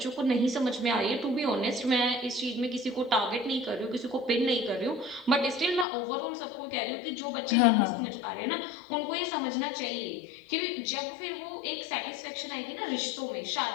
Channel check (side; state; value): right; drops out; at 5.9 s